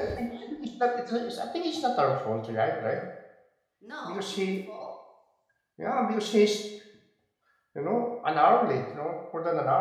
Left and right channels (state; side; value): identical; both; correlation 1.00